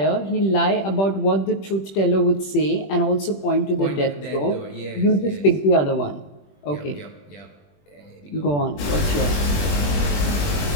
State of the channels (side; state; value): right; late; 21 ms